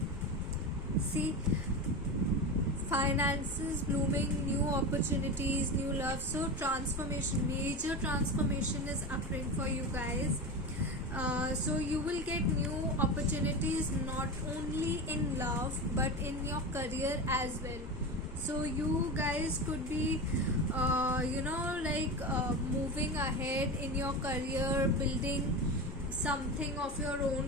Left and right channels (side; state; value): both; normal; correlation 0.23